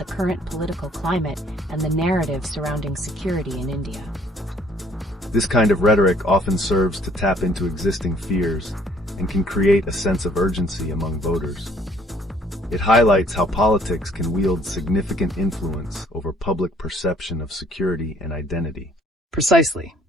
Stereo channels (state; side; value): normal; both; correlation 0.61